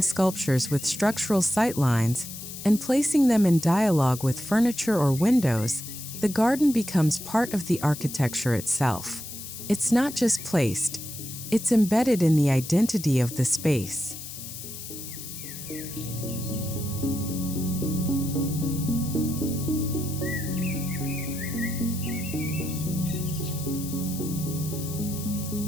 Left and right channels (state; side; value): noise; left; hiss, 10 dB below the sound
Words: sculptures with structural sightlines and placing them in dialogue with furniture or windows, the garden becomes part of the architecture itself. It's not just placed, it's embedded in the identity of the space.